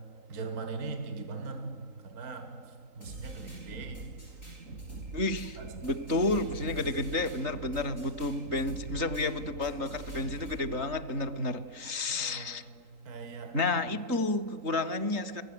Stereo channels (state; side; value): late; left; 3.9 ms